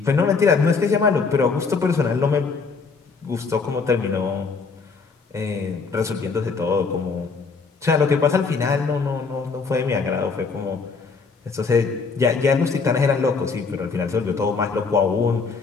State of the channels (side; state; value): right; quieter; 4.7 dB